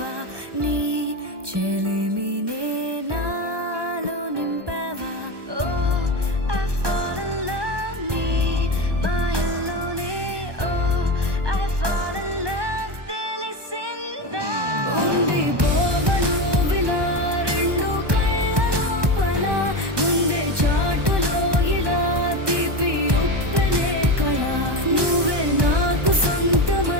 నీ చెలిమినే నాలో నింపావా ఓ I fall in love నీ మాయలోనే ఓ I fall in love తెలిసిందా ఉండిపోవను విలా రెండు కళ్ళ లోపల ముందే చాటులో ఇలా తీపి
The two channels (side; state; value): left; late; 1.2 ms